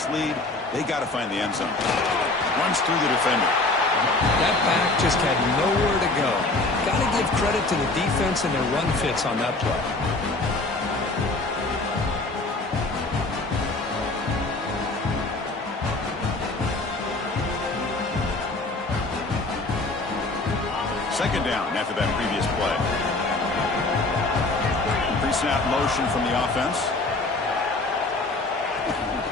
lead, they got to find the end zone. Runs through the defender. That back just had nowhere to go. Got to give credit to the defense and their run fits on that play. Second down after that previous play. Pre-snap motion from the offense.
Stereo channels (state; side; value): quieter; right; 3.1 dB